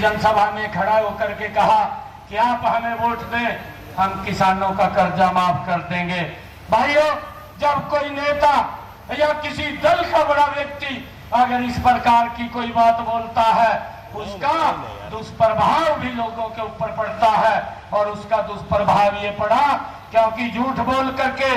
जनसभा में खड़ा होकर के कहा कि आप हमें वोट दें, हम किसानों का कर्जा माफ कर देंगे। भाइयों, जब कोई नेता या किसी दल का बड़ा व्यक्ति अगर इस प्रकार की कोई बात बोलता है, उसका दुष्प्रभाव भी लोगों के ऊपर पड़ता है। और उसका दुष्प्रभाव ये पड़ा क्योंकि झूठ बोल करके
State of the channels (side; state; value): both; identical; correlation 1.00